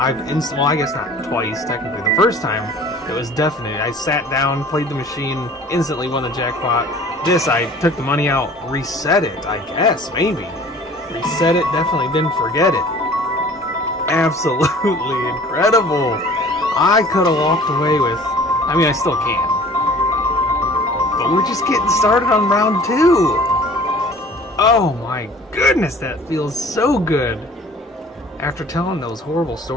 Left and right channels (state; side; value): normal; both; correlation 0.48